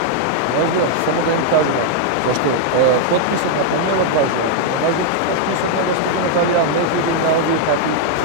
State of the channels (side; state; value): both; different; correlation 0.00